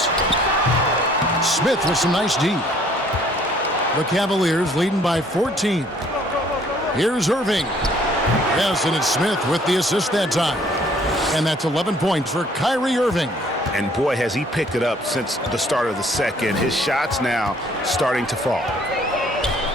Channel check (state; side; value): normal; both; correlation 0.59